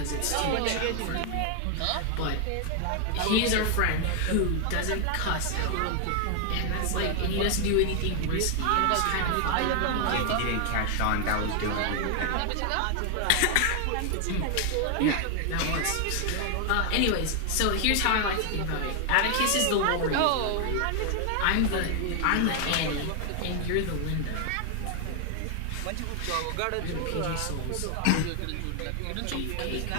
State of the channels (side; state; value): both; different; correlation 0.00